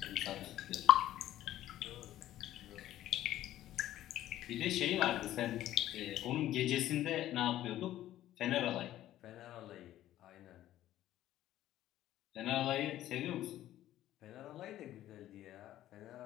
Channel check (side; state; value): right; quieter; 13.4 dB